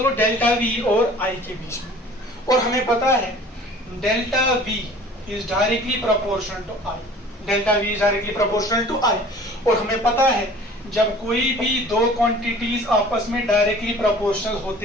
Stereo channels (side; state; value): both; normal; correlation 0.47